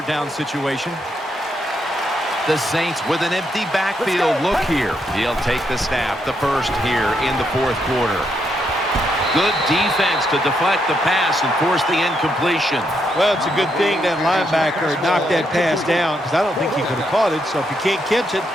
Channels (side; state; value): both; normal; correlation 0.78